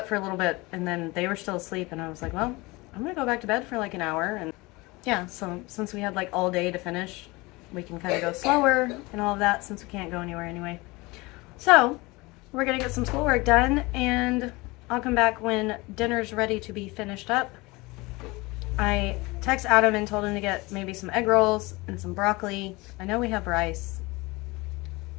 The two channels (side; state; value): right; quieter; 23.4 dB